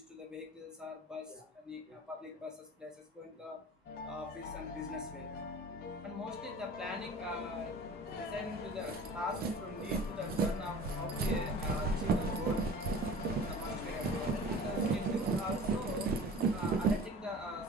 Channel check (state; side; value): normal; both; correlation 0.41